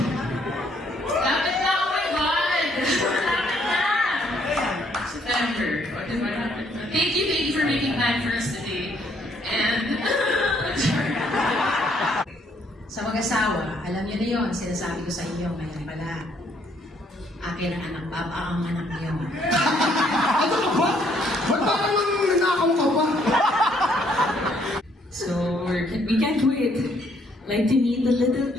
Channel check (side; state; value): both; normal; correlation 0.67